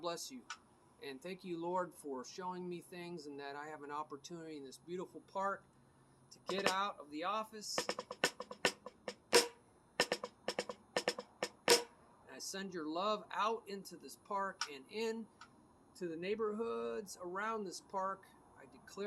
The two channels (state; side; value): identical; both; correlation 1.00